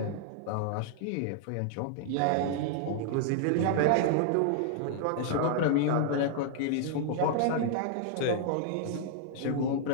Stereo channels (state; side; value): different; both; correlation -0.01